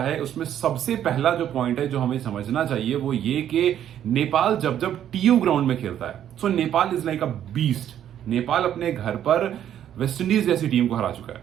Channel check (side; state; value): left; quieter; 10.5 dB